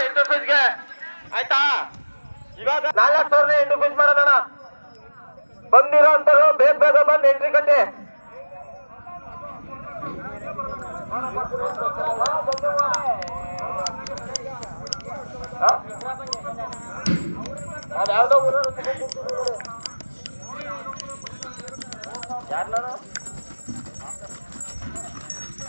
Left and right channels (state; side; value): inverted; both; correlation -1.00